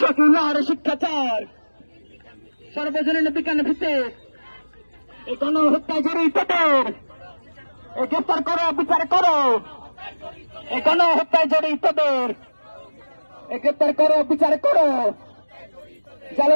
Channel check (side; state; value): both; inverted; correlation -1.00